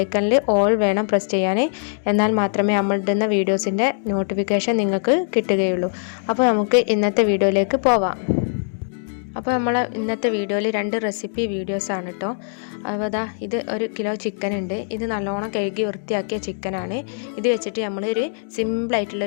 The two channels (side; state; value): right; silent; digital silence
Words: ഓൾ വേണം പ്രസ് ചെയ്യാനേ. എന്നാൽ മാത്രമേ നമ്മളിടുന്ന വീഡിയോസിൻ്റെ നോട്ടിഫിക്കേഷൻ നിങ്ങൾക്ക് കിട്ടുകയുള്ളൂ. അപ്പോൾ നമുക്ക് ഇന്നത്തെ വീഡിയോയിലേക്ക് പോവാം. അപ്പോൾ നമ്മൾ ഇന്നത്തെ വീഡിയോയിൽ 2 റെസിപ്പി വീഡിയോസാണ് കേട്ടോ. അപ്പോൾ അതാ ഇത് 1 കിലോ ചിക്കൻ ഉണ്ട്. ഇത് നല്ലോണം കഴുകി വൃത്തിയാക്കിയ ചിക്കനാണ്. ഇത് വെച്ചിട്ട് നമ്മളൊരു